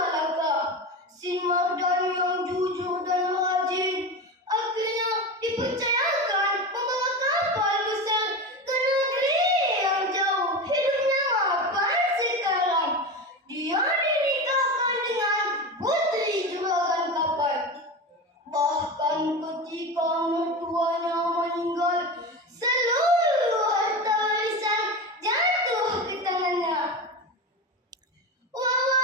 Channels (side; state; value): both; normal; correlation 0.24